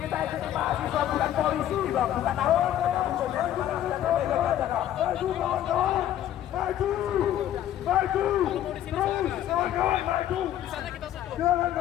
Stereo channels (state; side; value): quieter; right; 11.8 dB